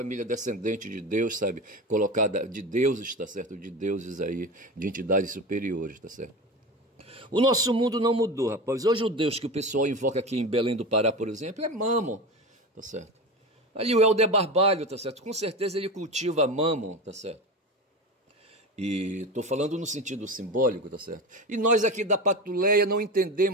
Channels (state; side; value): normal; both; correlation 0.26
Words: descendente de Deus, sabe? Colocada de deuses, tá certo? De deuses aí, de entidades superiores, tá certo? O nosso mundo não mudou, rapaz. Hoje o Deus que o pessoal invoca aqui em Belém do Pará, por exemplo, é Mammon, tá certo? Ali o Helder Barbalho, tá certo? Com certeza ele cultiva Mammon, tá certo? E estou falando no sentido simbólico, tá certo? E nós aqui da Patuleia não